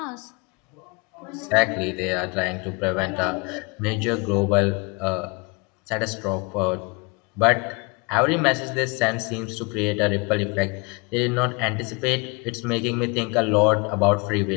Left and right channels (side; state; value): right; quieter; 28.6 dB